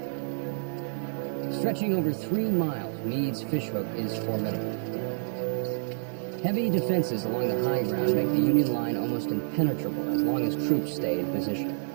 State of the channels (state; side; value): silent; left; digital silence